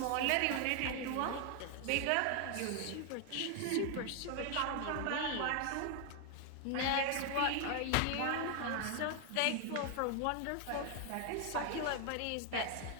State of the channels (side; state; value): both; different; correlation 0.00